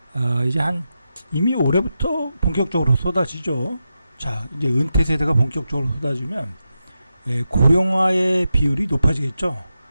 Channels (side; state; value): both; inverted; correlation -0.89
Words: 이제 이미 올해부터 본격적으로 쏟아지죠. 자, 이제 은퇴 세대가 본격적으로 쏟아지면 고령화의 비율이 높아지겠죠.